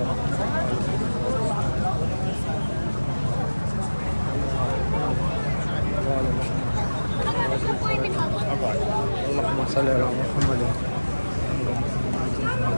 अल्लाहुम्मा सल्ली अला मुहम्मद।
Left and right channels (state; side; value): inverted; both; correlation -1.00